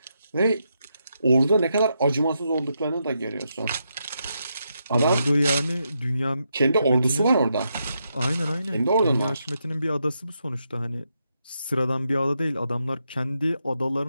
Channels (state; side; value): inverted; both; correlation -0.82